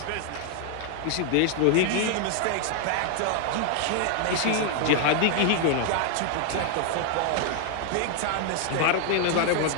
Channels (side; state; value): both; different; correlation 0.00